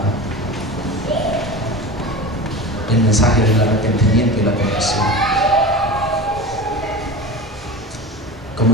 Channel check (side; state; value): both; normal; correlation 0.30